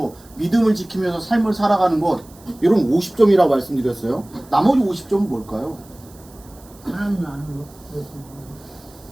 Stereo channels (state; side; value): noise; right; hiss, 25 dB below the sound